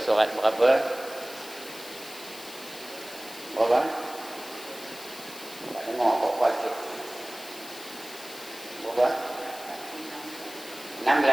surat berapa? Berapa? Tak dengar kok baca. Berapa?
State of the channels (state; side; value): noise; left; hiss, 14 dB below the sound